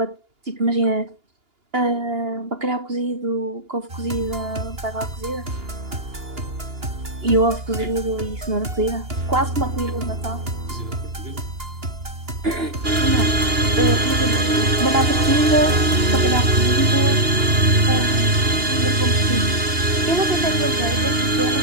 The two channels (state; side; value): late; left; 2.8 ms